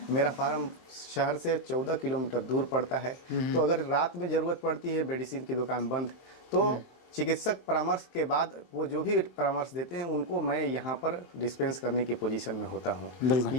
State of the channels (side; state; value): right; late; 23 ms